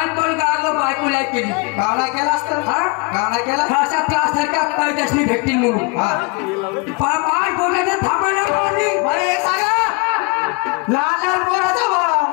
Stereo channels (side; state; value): right; quieter; 29.8 dB